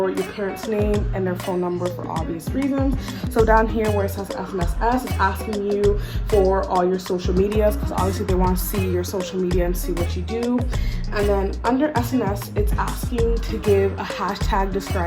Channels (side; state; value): both; identical; correlation 1.00